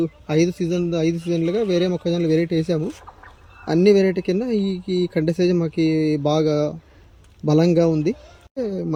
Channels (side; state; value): both; identical; correlation 1.00